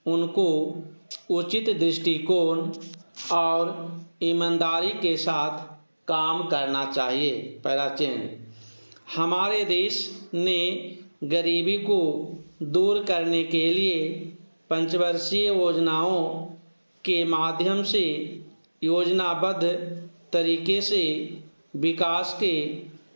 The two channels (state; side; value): inverted; both; correlation -1.00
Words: उनको उचित दृष्टिकोण और ईमानदारी के साथ काम करना चाहिए। पहला चेंज, हमारे देश ने गरीबी को दूर करने के लिए पंचवर्षीय योजनाओं के माध्यम से योजनाबद्ध तरीके से विकास के